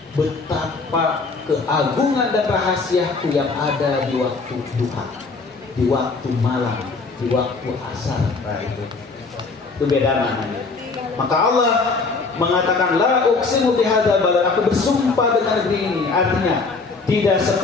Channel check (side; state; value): right; quieter; 4.1 dB